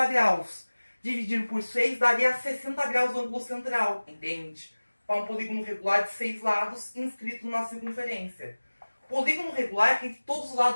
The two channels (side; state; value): both; inverted; correlation -1.00